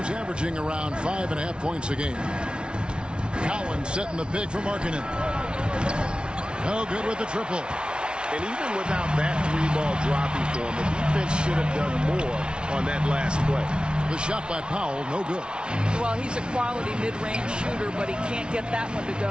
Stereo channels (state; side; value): late; left; 0.056 ms